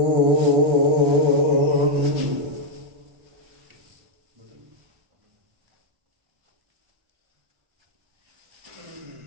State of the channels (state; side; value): late; left; 1.3 ms